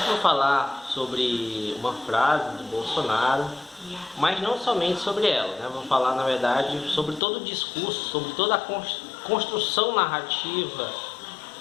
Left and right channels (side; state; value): right; drops out; at 7.2 s